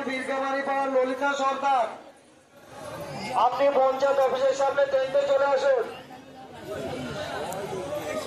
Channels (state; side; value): identical; both; correlation 1.00